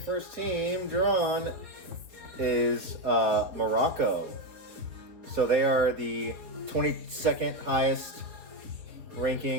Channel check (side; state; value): left; late; 4.2 ms